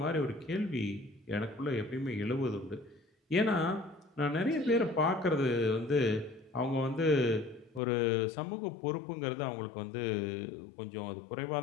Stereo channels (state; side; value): drops out; right; at 7.8 s